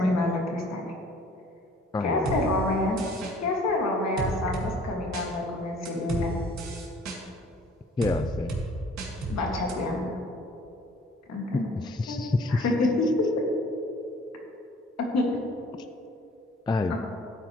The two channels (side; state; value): both; normal; correlation 0.53